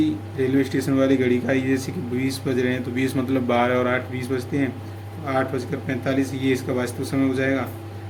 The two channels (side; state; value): both; identical; correlation 1.00